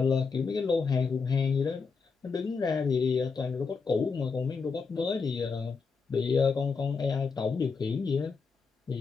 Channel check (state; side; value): quieter; right; 5.0 dB